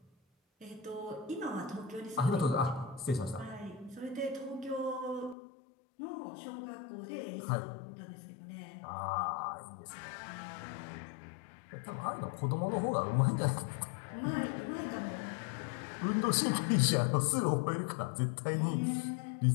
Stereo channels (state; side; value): drops out; right; at 5.4 s